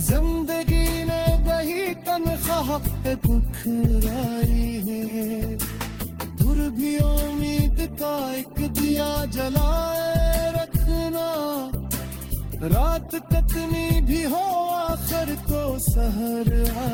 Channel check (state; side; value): identical; both; correlation 1.00